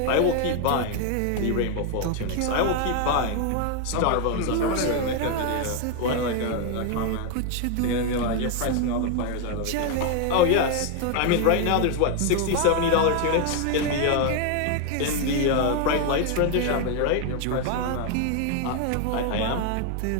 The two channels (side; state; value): both; different; correlation 0.01